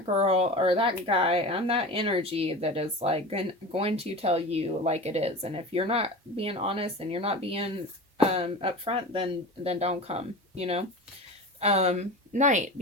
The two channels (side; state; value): both; normal; correlation 0.31